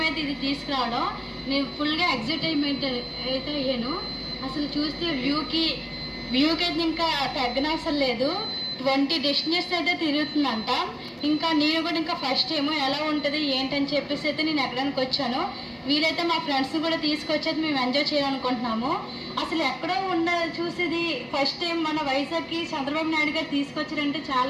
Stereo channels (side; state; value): both; identical; correlation 1.00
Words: అయితే ఇది తీసుకురావడం నేను ఫుల్గా ఎగ్జైట్మెంట్ అయితే అయ్యాను. అసలు చూస్తే వ్యూకి అయితే ఇంకా తగ్గనవసరం లేదు. 20 డెస్టినేషన్స్ అయితే తిరుగుతుందంట. ఇంకా నేను కూడా ఇంకా ఫస్ట్ టైం ఎలా ఉంటుంది ఏంటని చెప్పేసి అయితే నేను ఎక్కడానికి వచ్చాను. వీలైతే మా ఫ్రెండ్స్ని కూడా తీసుకొచ్చేది మేము ఎంజాయ్ చేయాలనుకుంటున్నాము. అసలు ఎక్కడో చూసేది ఫస్ట్ టైం మన వైజాగ్కి చంద్రబాబు నాయుడు గారు తీసుకొచ్చారంటే